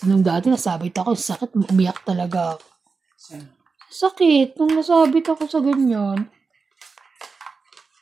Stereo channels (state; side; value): quieter; left; 4.6 dB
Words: nung dati nasabit ako, sakit, umiyak talaga ako. Sakit, nung nasabit ako sa ganyan.